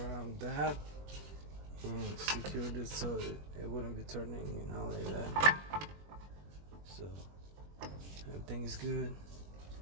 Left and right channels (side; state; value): left; late; 21 ms